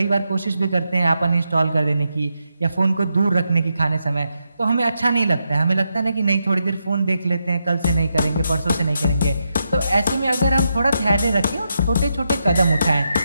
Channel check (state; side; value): inverted; both; correlation -0.84